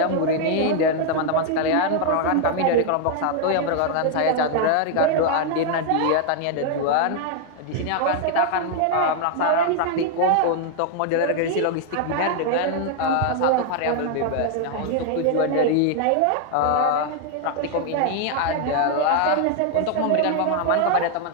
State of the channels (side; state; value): both; different; correlation 0.00